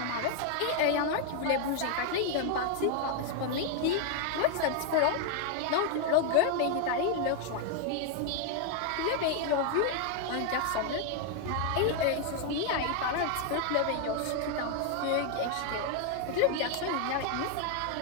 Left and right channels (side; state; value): both; different; correlation 0.00